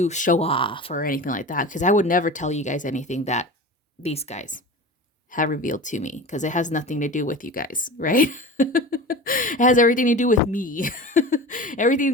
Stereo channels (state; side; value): normal; both; correlation 0.33